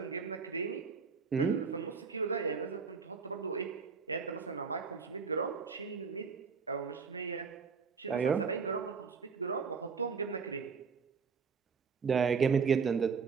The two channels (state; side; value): quieter; left; 5.5 dB